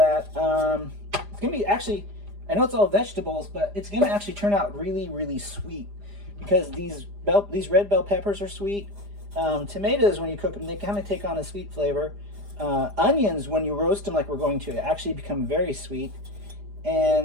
it's going to be actually I know it's all vegetables, but it's gonna actually turn out really, really sweet because these red bell peppers are sweet. Tomatoes, when you cook them, they kind of take on a sweet flavor. Onions, when you roast them like we're going to, actually become very sweet.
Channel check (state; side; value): late; left; 4.9 ms